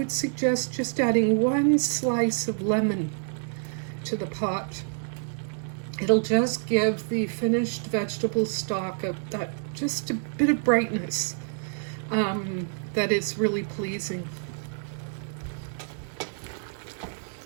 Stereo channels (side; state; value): left; silent; 60 dB below the other